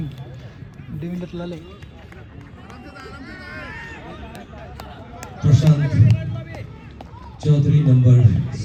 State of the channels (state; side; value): identical; both; correlation 1.00